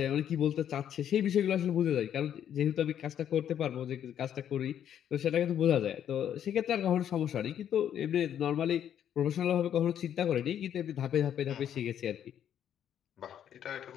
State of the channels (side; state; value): right; quieter; 9.8 dB